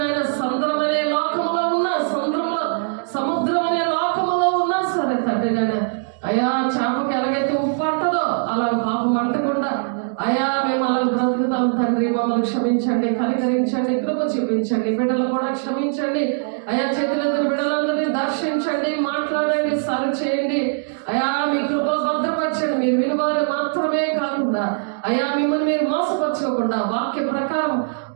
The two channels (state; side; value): silent; left; digital silence